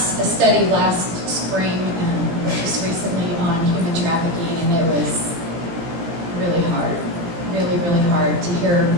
last spring, just recently, on human trafficking, and it was really hard, really, really hard to hear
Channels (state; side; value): late; left; 18 ms